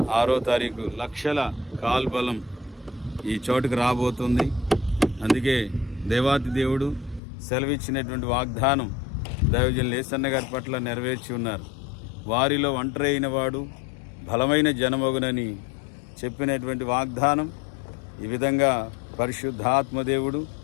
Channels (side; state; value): right; drops out; at 7.2 s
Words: 6వ తారీఖు లక్షల కాల్బలం ఈ చోటుకు రాబోతుంది. అందుకే దేవాతి దేవుడు సెలవిచ్చినటువంటి వాగ్దానం దైవజన్ లేసన్న గారి పట్ల నెరవేర్చి ఉన్నారు. వారిలో ఒంటరి అయిన వాడు బలమైన జనమగునని చెప్పినటువంటి వాగ్దానం ఈ విధంగా పరిశుద్ధాత్మదేవుడు